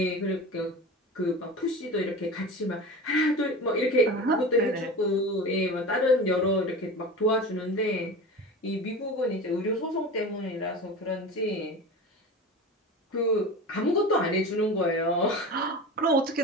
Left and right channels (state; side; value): normal; both; correlation 0.31